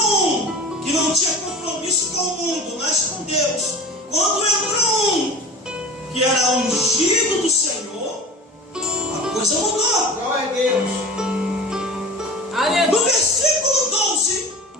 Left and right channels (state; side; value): normal; both; correlation 0.36